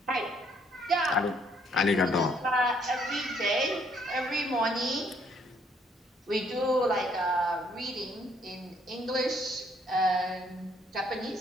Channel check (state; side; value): normal; both; correlation 0.67